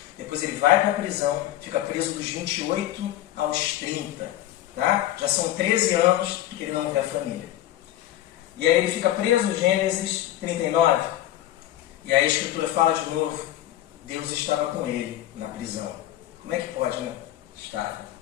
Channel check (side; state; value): right; quieter; 13.4 dB